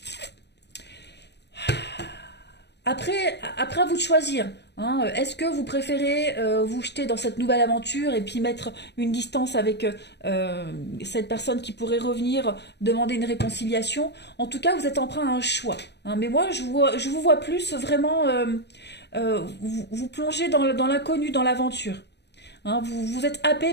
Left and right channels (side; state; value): right; late; 0.50 ms